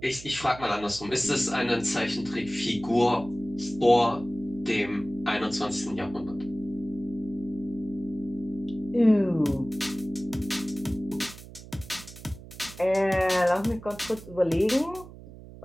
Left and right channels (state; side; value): noise; right; hum, 16 dB below the sound